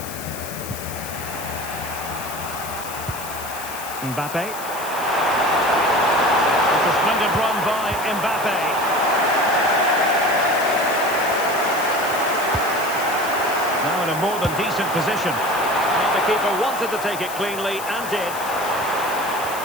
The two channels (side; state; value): left; noise; hiss, 11 dB below the sound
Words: Mbappe. It's a splendid run by Mbappe. Now in a more than decent position. Well, the keeper wanted to take it cleanly and did.